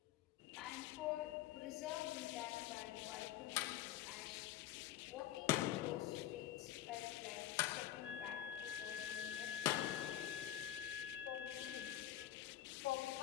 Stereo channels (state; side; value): quieter; right; 12.9 dB